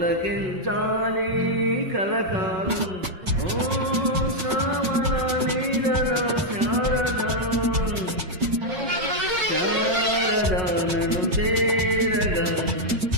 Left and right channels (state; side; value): late; left; 5.4 ms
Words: కలకాలం ఓ శ్రావణ నీరద శారదా శారదానను చేరగా